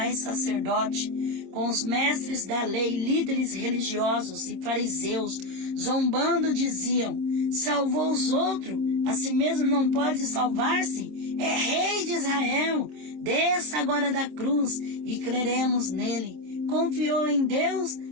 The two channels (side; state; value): left; late; 27 ms